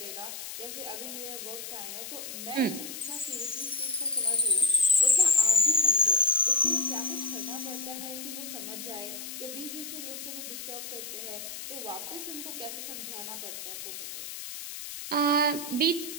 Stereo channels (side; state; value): left; noise; hiss, 9 dB below the sound